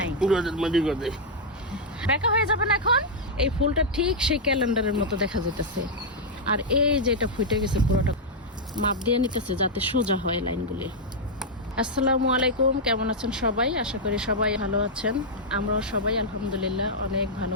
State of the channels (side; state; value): both; normal; correlation -0.04